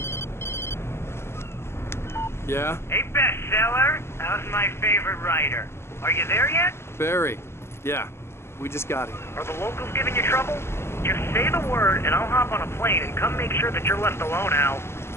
Yeah? Hey, bestseller. How's my favorite writer? Are you there yet? Barry. Yeah, we just got here. Are the locals giving you trouble? Just say the word and I'll hop on a plane and come make sure that you're left alone, Al.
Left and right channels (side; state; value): right; late; 0.12 ms